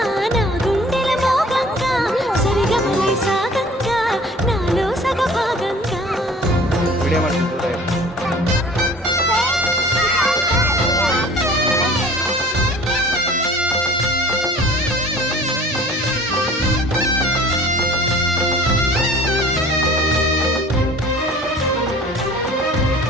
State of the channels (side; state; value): both; normal; correlation 0.47